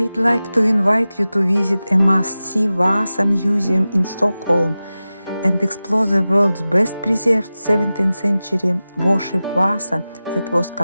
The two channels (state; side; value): inverted; both; correlation -0.95